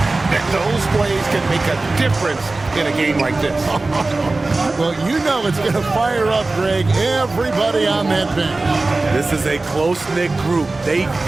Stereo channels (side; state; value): left; quieter; 3.3 dB